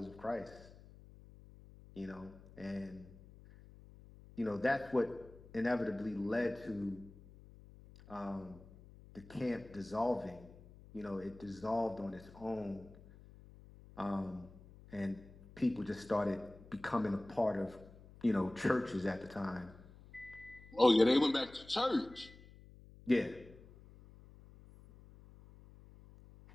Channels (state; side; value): noise; left; hum, 20 dB below the sound